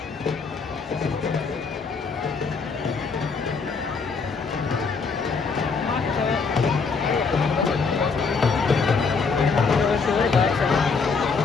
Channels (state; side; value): quieter; right; 4.9 dB